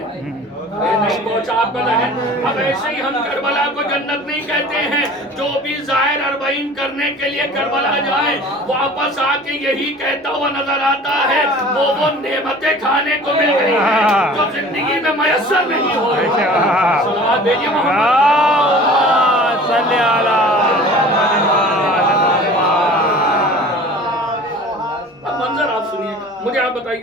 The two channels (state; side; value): normal; both; correlation 0.44